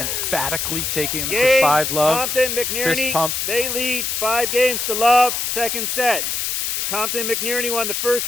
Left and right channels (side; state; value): left; noise; hiss, 1 dB below the sound